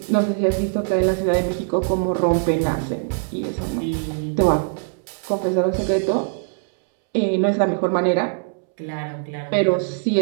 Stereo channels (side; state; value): left; silent; 64 dB below the other